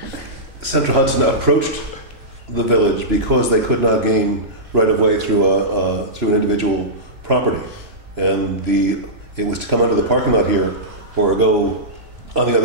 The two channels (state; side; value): late; left; 3.1 ms